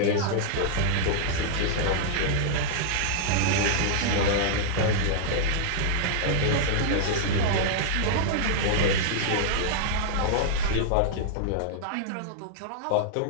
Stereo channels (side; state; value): both; different; correlation -0.01